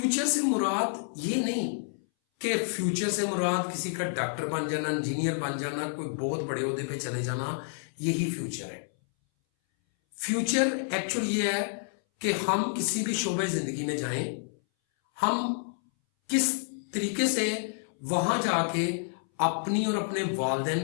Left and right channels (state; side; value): silent; right; 59 dB below the other